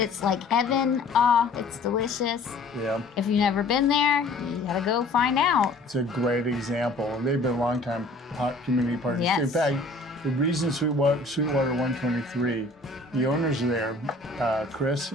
like heaven. It's delicious. Yeah. If you've never been there, you gotta go find out. It's a great example. They've been longtime community partners. Yes. In fact, the reason Sweetwater 123, the owners are there, Chris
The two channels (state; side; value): quieter; right; 3.0 dB